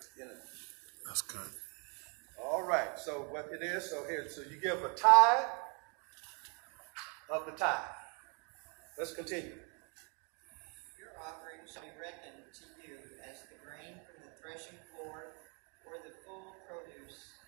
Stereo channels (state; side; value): quieter; left; 35.6 dB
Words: Yeah. That's good. All right. So what it is? So here, so you give a tithe of the tithe. Let's continue. Your offering shall be reckoned to you as the grain from the threshing floor, or the full produce